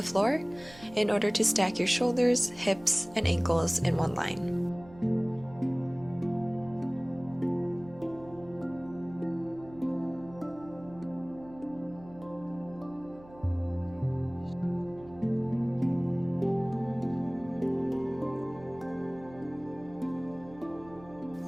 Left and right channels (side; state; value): right; noise; hum, 20 dB below the sound